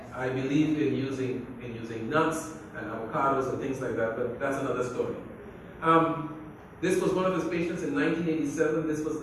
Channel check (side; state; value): both; identical; correlation 1.00